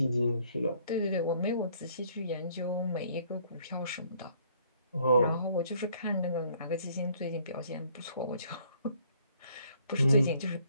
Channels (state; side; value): inverted; both; correlation -0.63